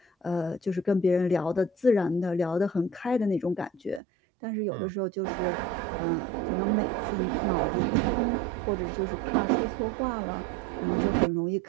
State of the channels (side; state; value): left; drops out; at 4.0 s